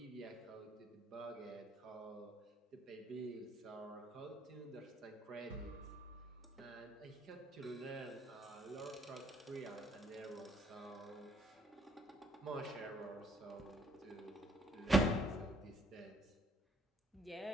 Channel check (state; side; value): normal; both; correlation 0.64